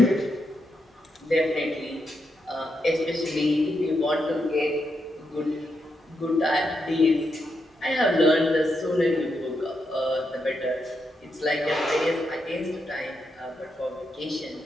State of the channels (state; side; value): normal; both; correlation 0.83